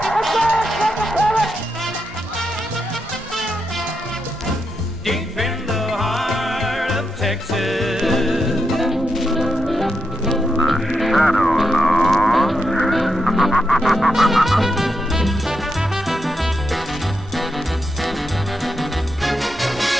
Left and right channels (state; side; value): normal; both; correlation 0.84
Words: Deep in the heart of Texas. The shadow knows.